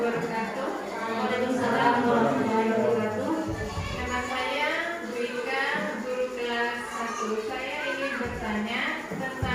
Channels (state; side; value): identical; both; correlation 1.00